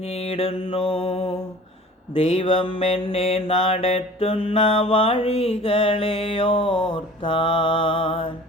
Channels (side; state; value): both; normal; correlation 0.45